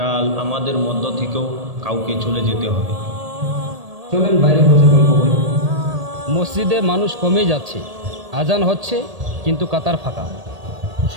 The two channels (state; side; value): late; left; 1.8 ms